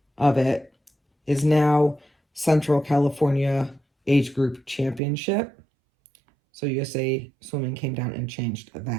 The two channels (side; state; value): left; drops out; at 5.0 s